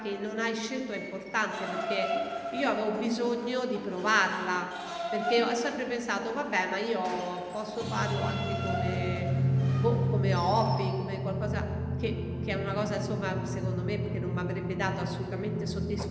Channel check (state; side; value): identical; both; correlation 1.00